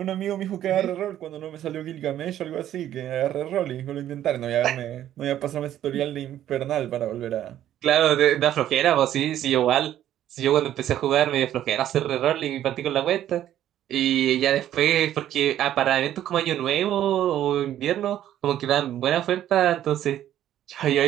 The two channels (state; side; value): quieter; left; 11.8 dB